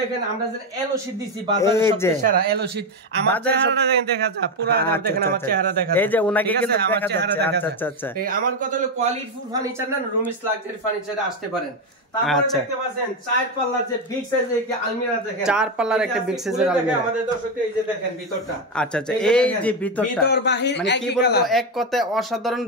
দেখেন আমরা যে এলো শীট দিছি বাজারে সবচেয়ে সেরা এলো শীট। আমার চেহারাটা দেখেন, দেখা যায় পুরো দেখেন আমার চেহারা দেখা যায়, এই যে উনাকে কিন্তু আমার দেখা চেহারা যাচ্ছে। দেখা আচ্ছা যায়। আচ্ছা আমার কথা হলো কোয়ালিটিফুল ফার্নিচার না, রুমিস লাক্সারি ফার্নিচারে আসতে পারেন। তারপরে দেখতে পাচ্ছেন 4 পাল্লার যে বিগ সাইজের একটা আলমিরা দেখেন, 4 পাল্লার একটা বিগ সাইজের আলমিরা আমাদের দর্শকদের। এই যে দেখেন ভিতরটা, আচ্ছা আচ্ছা এই যে ভিতরটা ভিতর বাহির মানে কি বলবো, এক কথায় অসাধারণ।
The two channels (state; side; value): normal; both; correlation 0.10